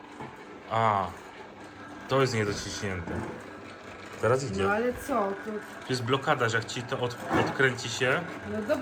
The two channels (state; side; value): identical; both; correlation 1.00